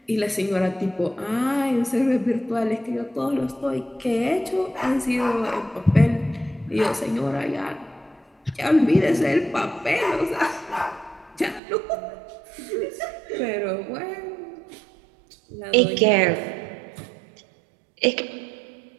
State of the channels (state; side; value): drops out; left; at 11.6 s